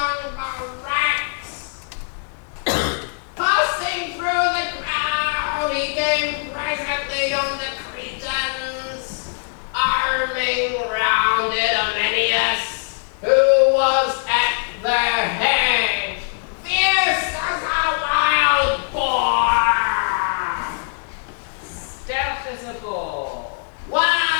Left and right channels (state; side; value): silent; right; digital silence